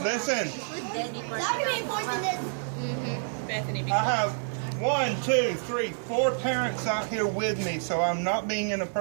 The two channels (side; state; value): left; silent; digital silence